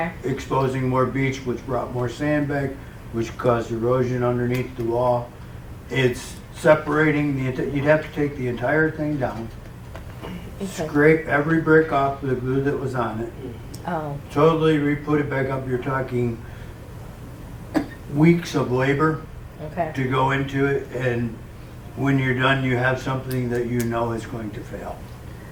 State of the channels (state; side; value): identical; both; correlation 1.00